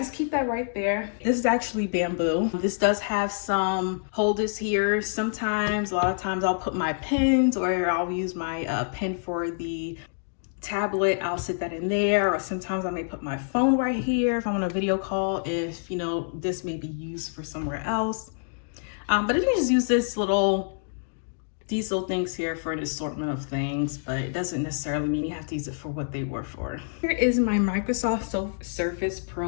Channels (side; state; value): right; silent; digital silence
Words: keep that right there. This is actually bamboo. This does have some holders here. Sometimes, a lot of times I'll put my pens, or I'll use my pen for the tablet. I'll sit that in there, or sometimes I may put my phone right here if I'm on a video call, if, you know, this may be used for somewhere else. But I can just use these little things here for an assortment of things, but it doesn't necessarily mean you have to use it for what they were for. Here is my Microsoft Surface